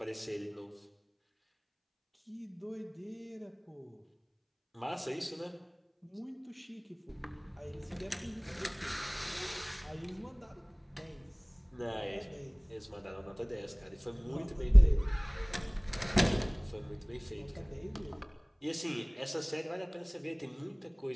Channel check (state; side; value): identical; both; correlation 1.00